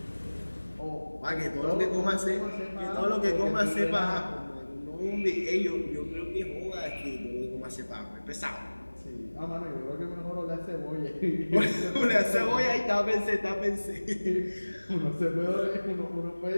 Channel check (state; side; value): inverted; both; correlation -1.00